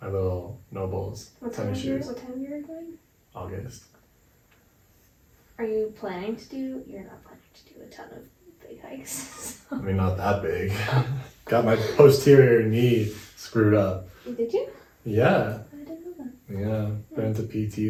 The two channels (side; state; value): both; identical; correlation 1.00